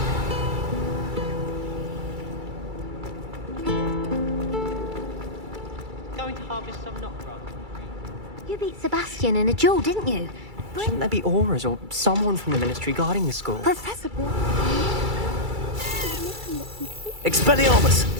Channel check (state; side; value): late; left; 2.3 ms